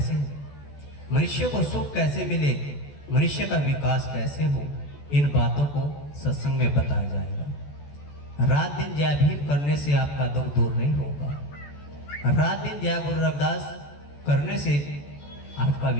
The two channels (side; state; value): right; late; 14 ms